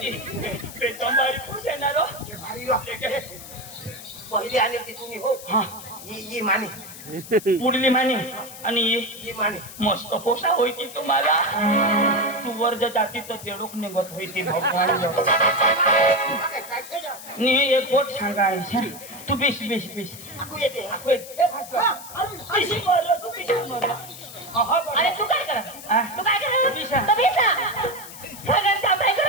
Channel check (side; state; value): left; noise; hiss, 14 dB below the sound